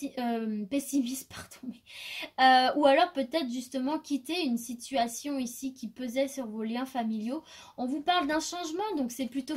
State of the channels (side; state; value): both; identical; correlation 1.00